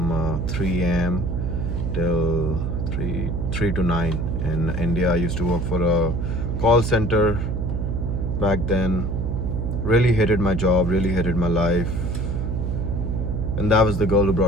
3 a.m. till 3 to 9 in India. I used to work for a call center back then. Really hated my job, really hated my life. And that was the girl who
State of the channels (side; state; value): right; noise; hum, 1 dB below the sound